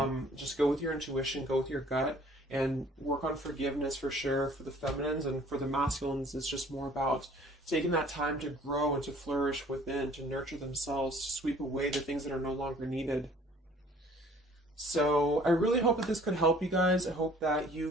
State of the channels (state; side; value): normal; both; correlation 0.54